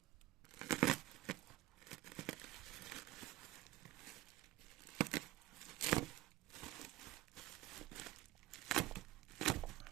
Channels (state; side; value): quieter; left; 16.6 dB